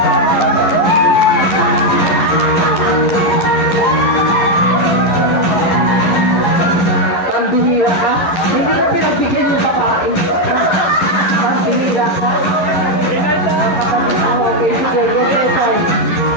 Pambihira ka? Hindi ko pinagbigyan yung babae. Pambihira ka? Okay, sige.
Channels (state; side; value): late; right; 11 ms